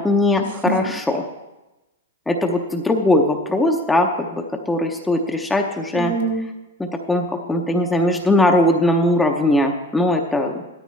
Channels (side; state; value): both; normal; correlation 0.50